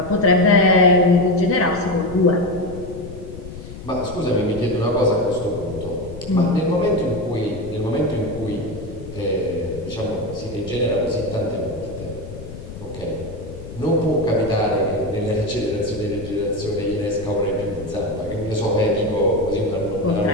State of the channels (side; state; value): left; noise; rumble, 13 dB below the sound